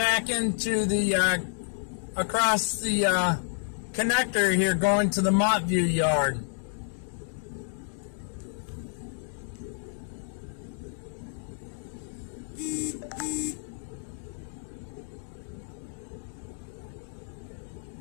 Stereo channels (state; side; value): silent; right; digital silence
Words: into the, across the connector here, going to the Montview yard.